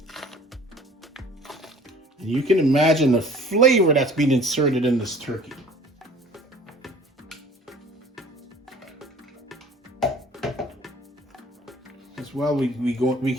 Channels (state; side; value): normal; both; correlation 0.49